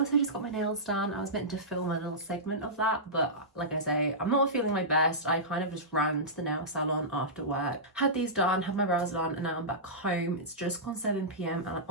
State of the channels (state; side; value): normal; both; correlation -0.16